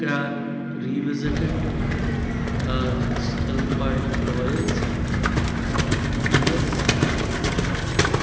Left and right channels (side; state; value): both; identical; correlation 1.00